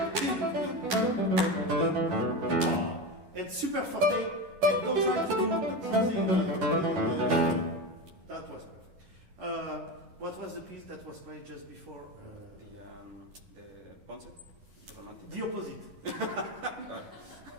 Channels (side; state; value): left; late; 10 ms